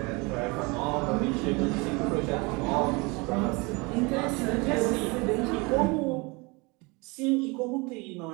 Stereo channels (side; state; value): left; quieter; 27.0 dB